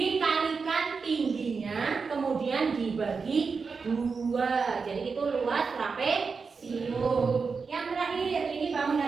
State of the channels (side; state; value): left; quieter; 5.0 dB